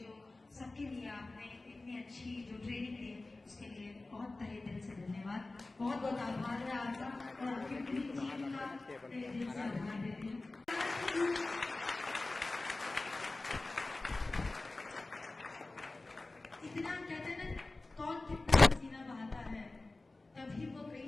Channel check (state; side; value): quieter; right; 3.1 dB